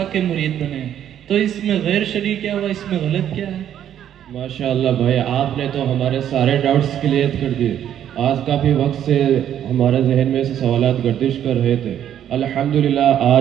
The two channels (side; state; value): left; quieter; 10.3 dB